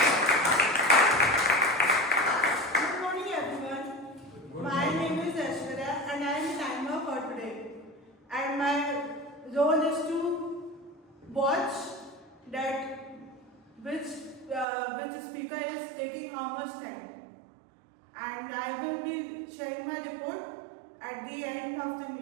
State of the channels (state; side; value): drops out; left; at 14.7 s